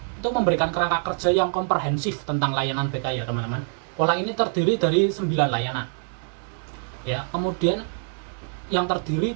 itu memberikan kerangka kerja yang komprehensif tentang layanan BK ya teman-teman. Pola ini terdiri dari 9 layanan. Ya, kemudian yang terdiri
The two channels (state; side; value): silent; left; 56 dB below the other